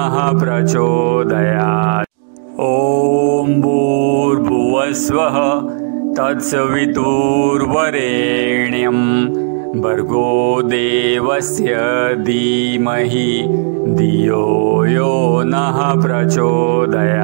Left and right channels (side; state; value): left; silent; digital silence